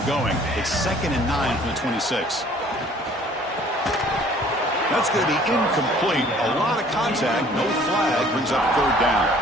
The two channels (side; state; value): both; normal; correlation 0.54